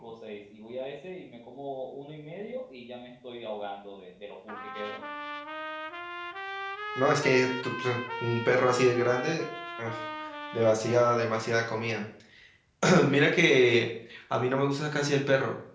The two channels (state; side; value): identical; both; correlation 1.00